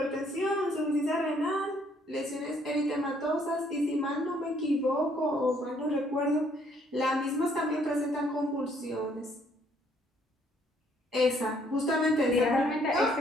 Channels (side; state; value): both; normal; correlation 0.66